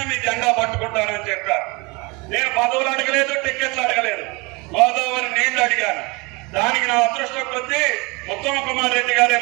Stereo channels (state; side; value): quieter; left; 26.9 dB